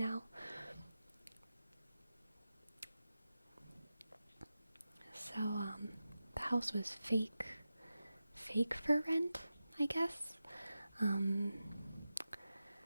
So, the house was fake fake for rent, I guess. And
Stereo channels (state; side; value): inverted; both; correlation -0.93